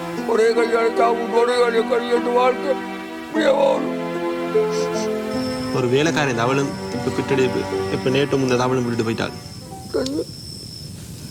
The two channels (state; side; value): identical; both; correlation 1.00